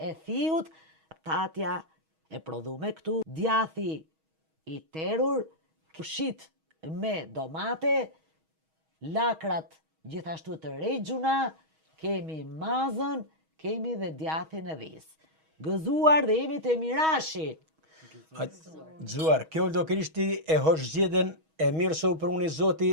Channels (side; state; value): left; late; 6.3 ms